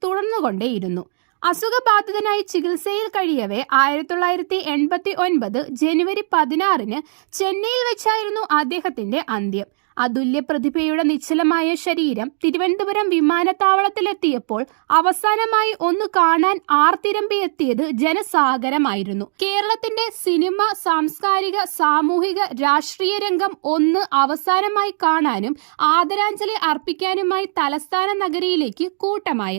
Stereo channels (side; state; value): left; silent; digital silence